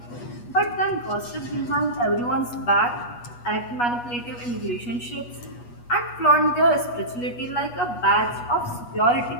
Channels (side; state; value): right; late; 8.3 ms